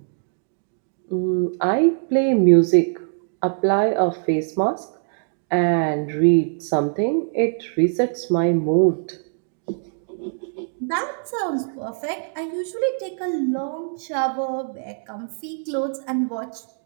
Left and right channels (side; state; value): left; silent; digital silence